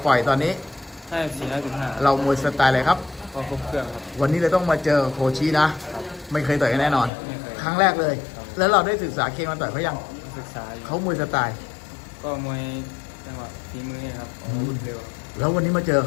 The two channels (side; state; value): right; drops out; at 7.1 s